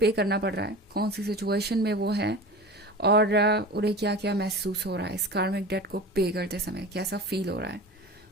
करना पड़ रहा है, कौन सी सिचुएशन में वो है, और उन्हें क्या क्या महसूस हो रहा है इस कार्मिक डेट को पे करते समय, कैसा फील हो रहा है।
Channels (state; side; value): normal; both; correlation 0.34